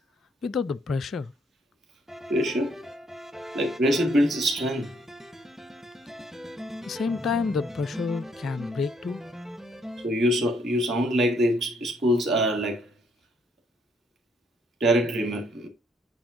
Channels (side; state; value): both; normal; correlation 0.70